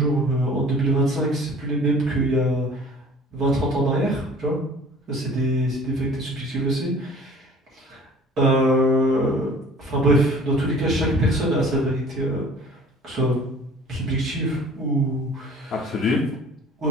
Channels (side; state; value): both; normal; correlation 0.48